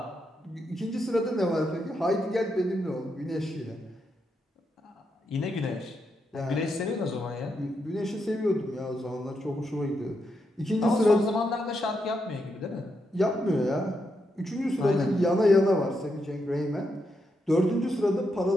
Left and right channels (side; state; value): both; normal; correlation 0.82